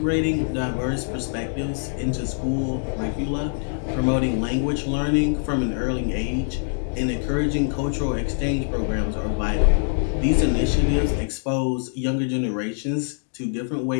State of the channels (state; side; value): silent; right; digital silence